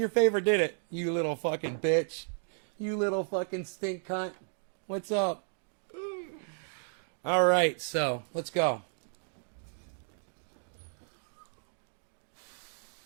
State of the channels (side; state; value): left; silent; 56 dB below the other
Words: favor, did it? You little fucking bitch. You little fucking stink cunt. What's up? All right, so let's go.